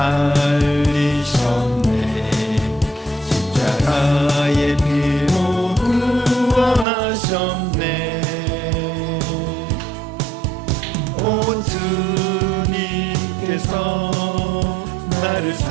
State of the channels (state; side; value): drops out; left; at 6.9 s